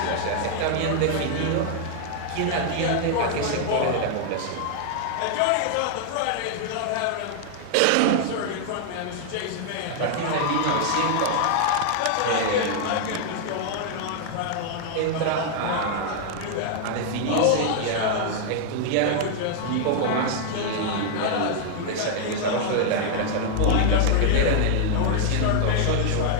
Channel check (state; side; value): different; both; correlation 0.00